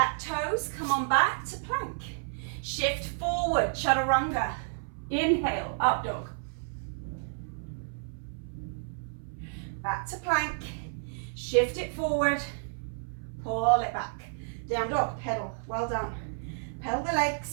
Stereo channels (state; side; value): silent; left; 57 dB below the other